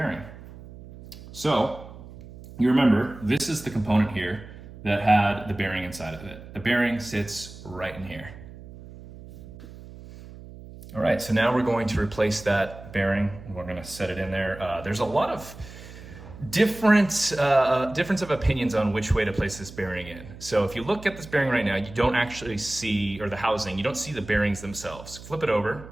So, you remember, this is the component here that had the bearing inside of it. The bearing sits right in here. All right, so now we're going to replace that bearing. We're gonna set it in there. There's a lot of difference of opinions on which way to place this bearing in. So if you look at this bearing right now, you don't actually see, or the housing, you don't see the bearings themselves. Flip it over,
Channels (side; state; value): right; noise; hum, 16 dB below the sound